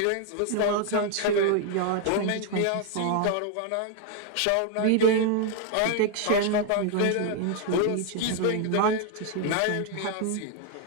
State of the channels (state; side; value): different; both; correlation 0.00